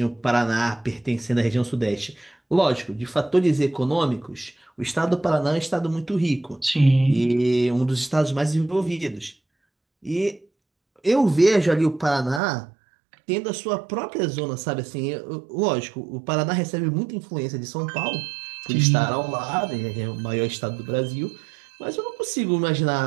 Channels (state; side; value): drops out; left; at 12.4 s